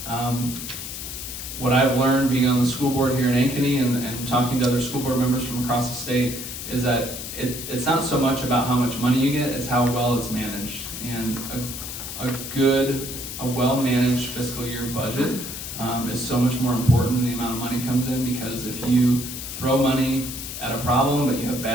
what I've learned being on the school board here in Ankeny and talking to other school board members from across the state is that it's not so much about how much money you get, it's how well it's managed. And a well-managed fiscal year budget is so much more important than the amount of money comes in, because if you throw money at a problem but you have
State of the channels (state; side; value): noise; left; hiss, 8 dB below the sound